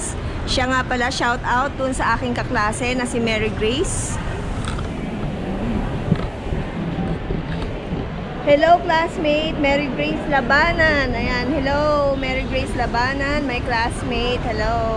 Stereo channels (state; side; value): identical; both; correlation 1.00